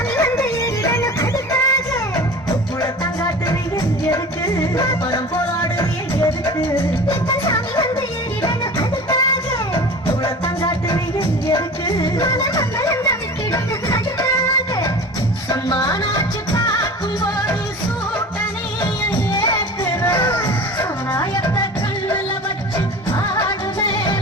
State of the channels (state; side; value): normal; both; correlation 0.37